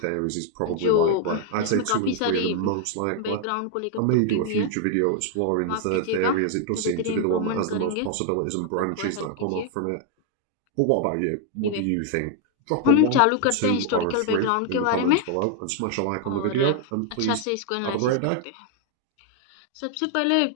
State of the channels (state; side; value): different; both; correlation 0.00